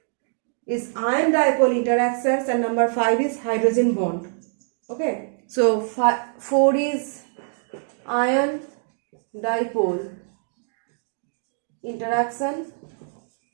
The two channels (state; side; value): silent; left; 63 dB below the other